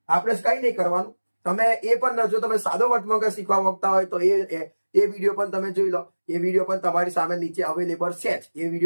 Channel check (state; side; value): inverted; both; correlation -1.00